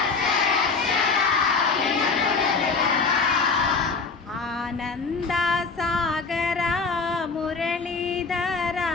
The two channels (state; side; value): quieter; right; 4.6 dB